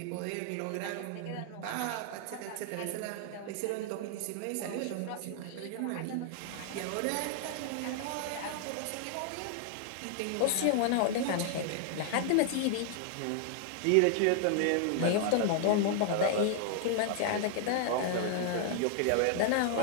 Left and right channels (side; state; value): both; different; correlation 0.00